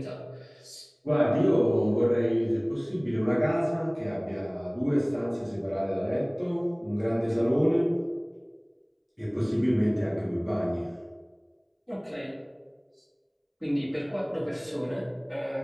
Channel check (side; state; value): both; identical; correlation 1.00